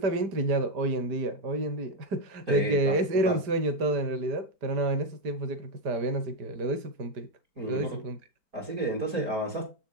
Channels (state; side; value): late; left; 4.9 ms